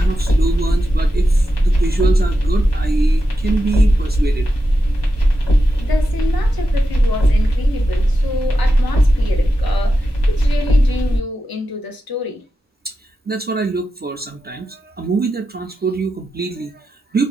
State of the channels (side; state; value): both; normal; correlation 0.89